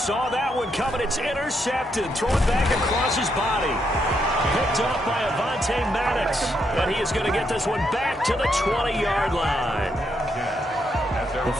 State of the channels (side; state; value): both; normal; correlation 0.78